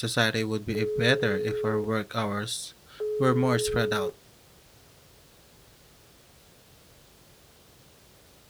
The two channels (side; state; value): both; identical; correlation 1.00